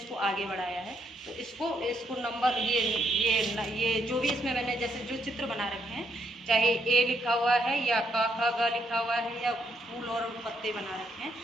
आगे बढ़ाया है। तो इसको नंबर ये जो भी इसमें मैंने जैसे जो चित्र बना रखे हैं, चाहे A लिखा हुआ है या क ख ग लिखा हुआ है या फूल और पत्ते बना रखे हैं,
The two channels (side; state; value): both; normal; correlation 0.75